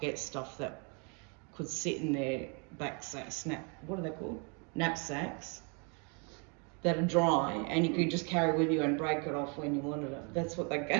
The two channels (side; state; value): left; quieter; 35.8 dB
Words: get stuff that could sit in their what are they called? Knapsacks. That are dry, and you could just carry with you and break it off when you wanted it. That's what they